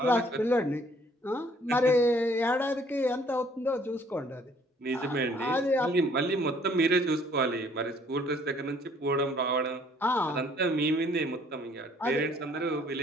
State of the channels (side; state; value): both; normal; correlation 0.61